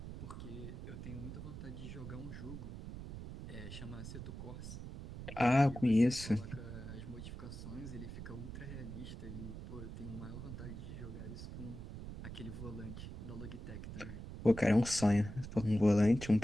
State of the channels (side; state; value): right; noise; rumble, 9 dB below the sound